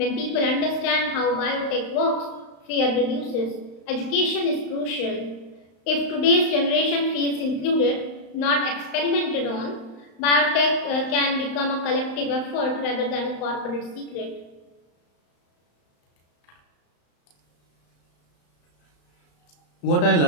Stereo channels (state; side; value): late; right; 35 ms